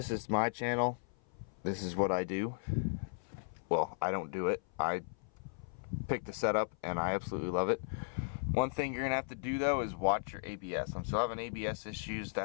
is my channel. This is what I do. Well, I don't do it. I picked the setup and I absolutely love it. One thing you're gonna have to do though is watch your ABS. I'm still having ABS issues.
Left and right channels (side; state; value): right; silent; 54 dB below the other